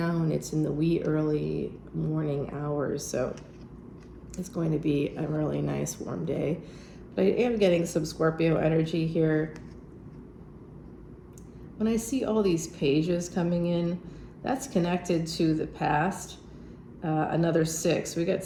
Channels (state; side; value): identical; both; correlation 1.00